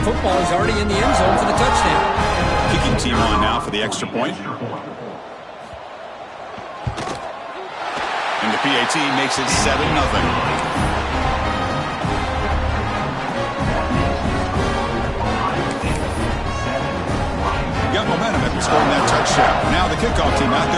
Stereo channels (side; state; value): both; identical; correlation 1.00